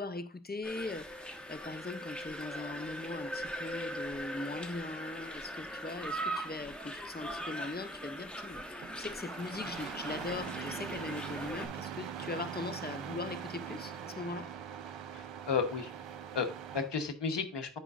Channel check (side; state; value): both; normal; correlation 0.38